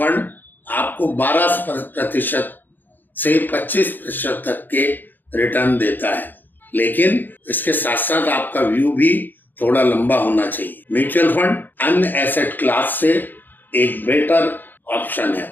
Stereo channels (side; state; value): right; late; 0.089 ms